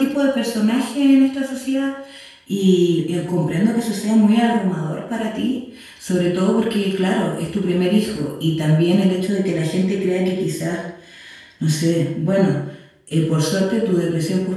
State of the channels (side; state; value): both; identical; correlation 1.00